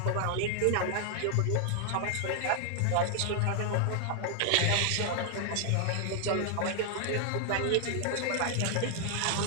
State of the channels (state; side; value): different; both; correlation 0.00